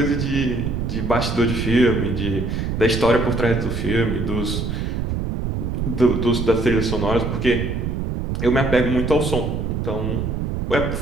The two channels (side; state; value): right; noise; rumble, 2 dB below the sound